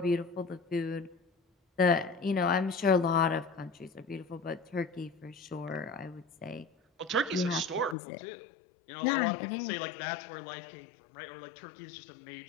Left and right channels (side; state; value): right; drops out; at 8.0 s